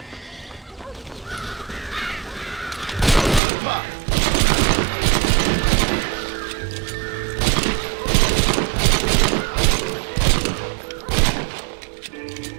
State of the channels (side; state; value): left; drops out; at 3.4 s